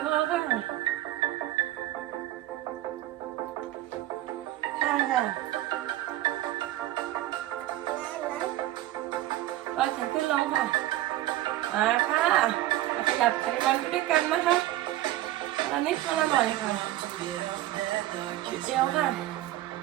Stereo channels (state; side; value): quieter; left; 15.1 dB